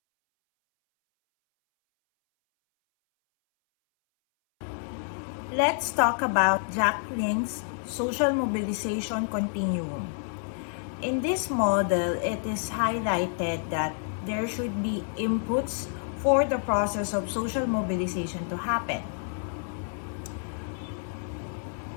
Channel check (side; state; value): right; silent; 59 dB below the other